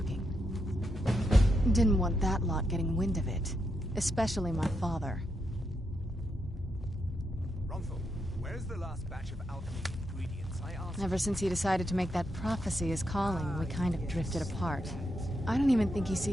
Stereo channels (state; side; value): normal; both; correlation 0.82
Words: Didn't want that lot getting wind of it. Especially my father. Ronthal, where's the last batch of alchemy ingredients I asked? Ever since he decided to make that prophecy his calling, we kind of drifted apart. I don't even think he